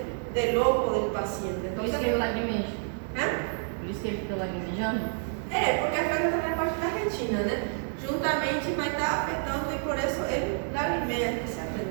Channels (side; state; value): left; silent; 59 dB below the other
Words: del ojo del paciente. Por isso Entonces, que ele lagrimeja. ¿eh? Por isso que ele fica lagrimejando. Porque afeta também a parte da retina, né? Juntamente vai estar afetando e por isso ele lagrimeia